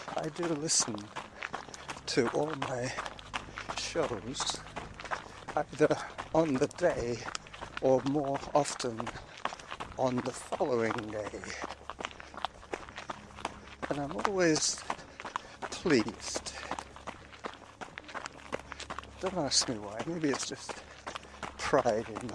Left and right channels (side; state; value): both; identical; correlation 1.00